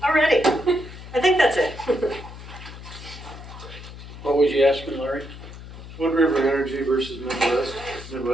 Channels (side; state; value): left; noise; hum, 14 dB below the sound